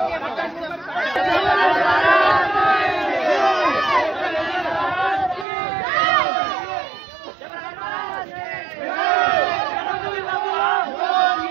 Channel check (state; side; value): drops out; left; at 5.5 s